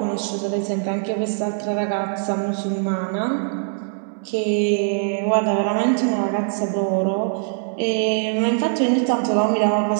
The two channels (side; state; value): left; silent; 64 dB below the other